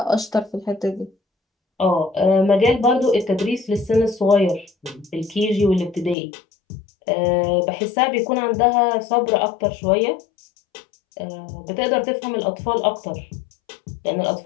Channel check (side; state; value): right; drops out; at 6.2 s